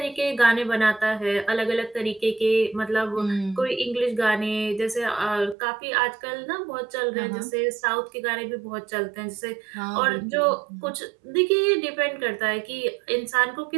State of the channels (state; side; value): drops out; left; at 5.6 s